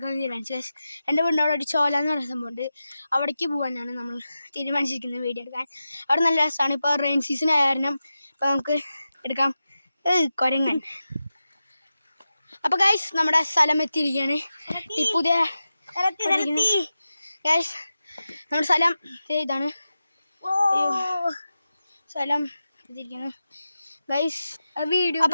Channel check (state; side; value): inverted; both; correlation -0.92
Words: തീരുമാനിച്ചു. എൻ്റെ വീടിൻ്റെ അവിടെ ഒരു ചോല എന്ന് പറയുന്ന സംഭവമുണ്ട്, അവിടേക്ക് പോകാനാണ് നമ്മൾ തീരുമാനിച്ചിരിക്കുന്നത് വീഡിയോ എടുക്കാൻ. അവിടെ നല്ല രസമാണ്. ഇപ്പോൾ റെയിൻ സീസൺ ആയ കാരണം ഇപ്പോൾ നമുക്ക് എടുക്കാം. കുരങ്ങൻ. അപ്പോൾ ഗൈസ്, നമ്മുടെ സ്ഥലം എത്തിയിരിക്കുകയാണ്. ടിപ്പുദേ ഗൈസ്, നമ്മുടെ സ്ഥലം ഇതാണ്. സ്ഥലം എത്തിയിരിക്കുന്നു ഗൈസ്.